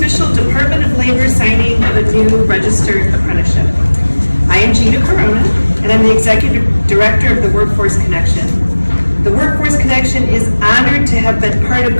Department of Labor signing of a new registered apprenticeship. I am Gina Corona, and I'm the Executive Director of the Workforce Connection. The Workforce Connection is honored to have been part of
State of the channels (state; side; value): inverted; both; correlation -1.00